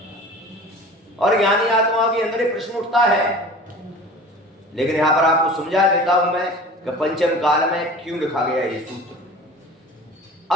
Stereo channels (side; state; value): both; normal; correlation 0.40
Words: और ज्ञानी आत्माओं के अंदर एक प्रश्न उठता है, लेकिन यहां पर आपको समझा देता हूं मैं कि पंचम काल में क्यों लिखा गया ये सूत्र।